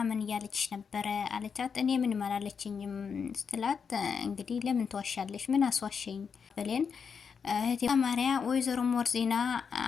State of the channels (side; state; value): right; quieter; 6.2 dB